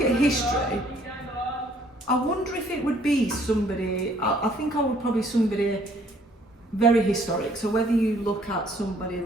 at history, I wonder if it would be somebody, I think I would probably somebody very historic. So whether you look at somebody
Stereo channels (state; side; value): normal; both; correlation 0.62